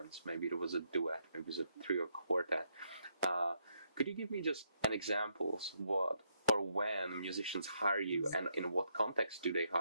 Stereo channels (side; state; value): both; inverted; correlation -0.76